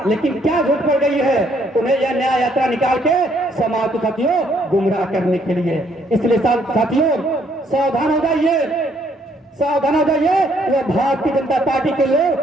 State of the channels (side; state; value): both; normal; correlation 0.68